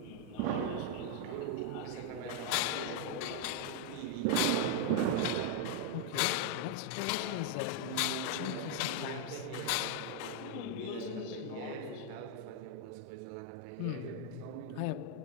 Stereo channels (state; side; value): different; both; correlation 0.00